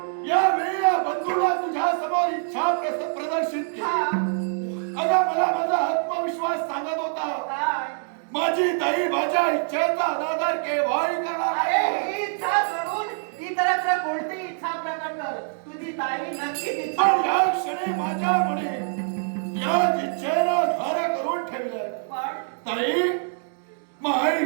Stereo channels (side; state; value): left; silent; digital silence